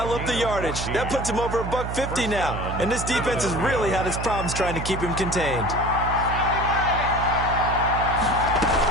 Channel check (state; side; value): noise; right; hum, 5 dB below the sound